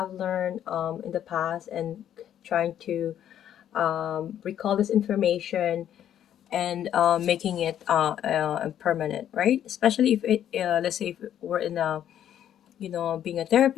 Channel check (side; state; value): right; quieter; 10.4 dB